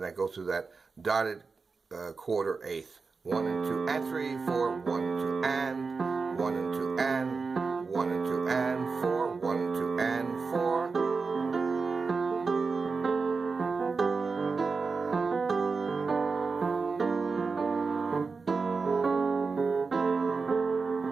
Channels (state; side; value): quieter; left; 4.6 dB